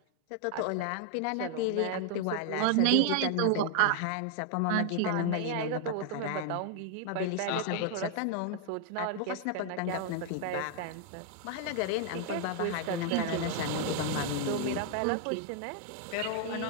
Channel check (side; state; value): both; different; correlation 0.00